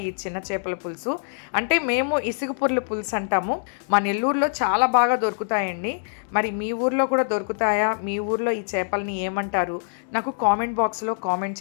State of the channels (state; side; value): silent; right; 62 dB below the other